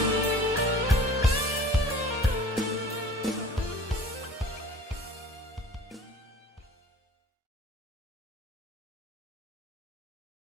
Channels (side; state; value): both; normal; correlation 0.45